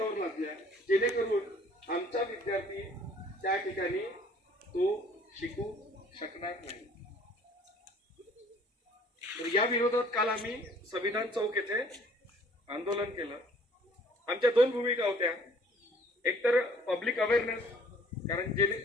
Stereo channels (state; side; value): normal; both; correlation 0.56